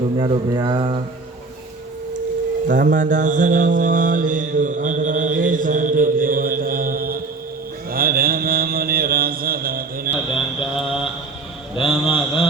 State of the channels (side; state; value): left; quieter; 3.7 dB